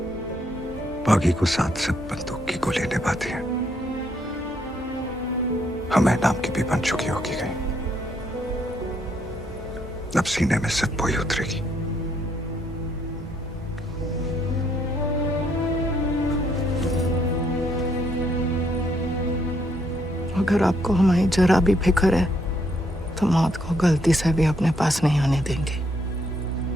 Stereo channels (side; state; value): both; normal; correlation 0.72